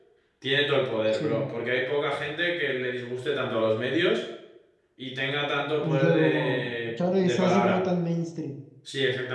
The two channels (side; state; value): both; identical; correlation 1.00